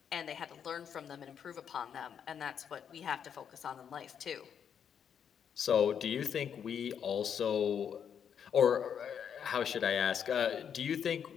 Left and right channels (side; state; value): right; quieter; 8.0 dB